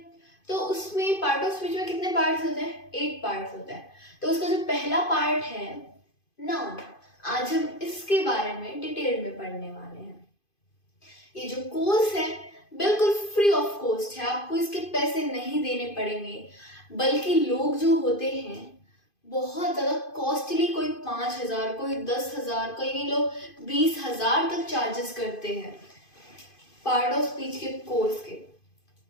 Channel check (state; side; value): late; right; 2.5 ms